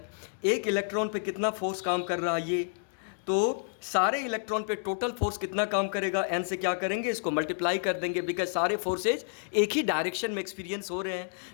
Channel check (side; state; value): right; silent; digital silence